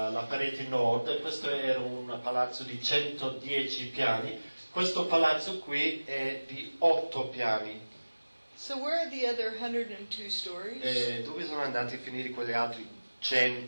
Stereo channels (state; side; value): inverted; both; correlation -1.00